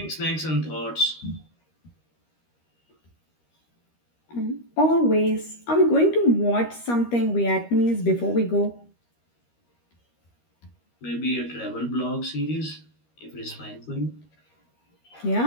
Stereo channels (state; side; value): late; right; 13 ms